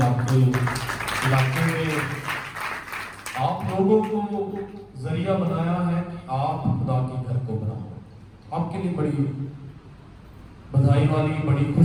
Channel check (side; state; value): both; identical; correlation 1.00